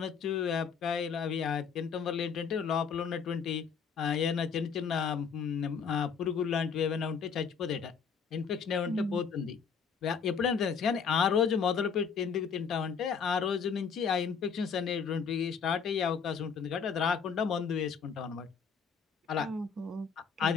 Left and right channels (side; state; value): right; quieter; 6.3 dB